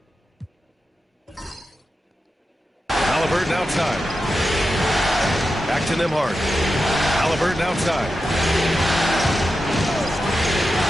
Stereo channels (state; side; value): normal; both; correlation 0.90